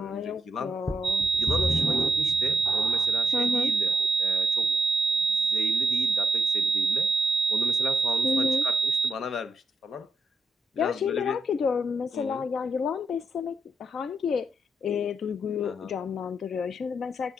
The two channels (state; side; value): normal; both; correlation 0.79